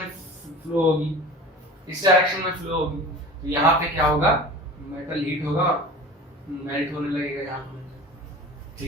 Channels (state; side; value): normal; both; correlation 0.38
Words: फ्लो होगी, इस डायरेक्शन में फ्लो होगी, तो यहाँ पे क्या होगा मेटल हीट होगा मेल्ट होने लगेगा यहाँ पे,